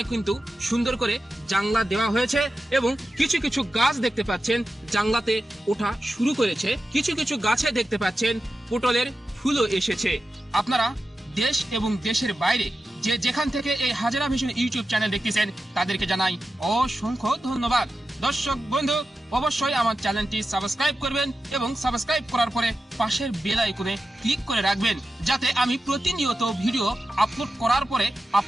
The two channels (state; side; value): normal; both; correlation 0.91